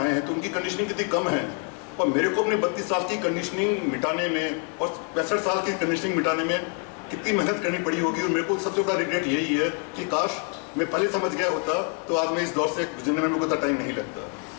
आए हैं तो उनकी कंडीशनिंग कितनी कम है, और मेरे को अपने 32 साल की कंडीशनिंग मिटाने में और 65 साल की कंडीशनिंग मिटाने में कितनी मेहनत करनी पड़ी होगी। और मेरे को सबसे बड़ा रिग्रेट यही है कि काश मैं पहले समझ गया होता तो आज मैं इस दौर से गुजरने में मेरे को इतना टाइम नहीं लगता।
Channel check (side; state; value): right; quieter; 35.2 dB